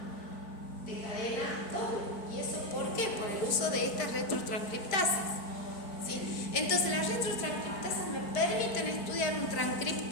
de cadena doble. ¿Y eso por qué? Por el uso de estas retrotranscriptasas, ¿sí? Entonces las retrotranscriptasas me permiten estudiar un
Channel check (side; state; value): right; late; 4.5 ms